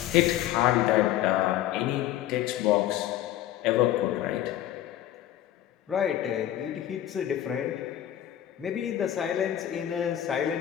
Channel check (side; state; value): right; quieter; 12.3 dB